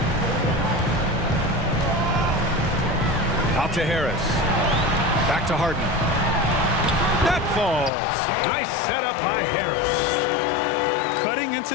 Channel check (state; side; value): drops out; right; at 7.9 s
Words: Out to Harris. Back to Harden. That falls. Nice setup by Harris. Cutting into